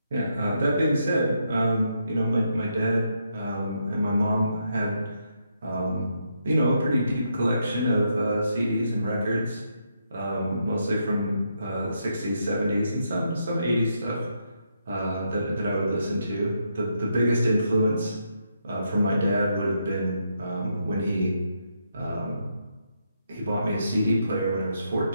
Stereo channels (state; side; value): inverted; both; correlation -0.79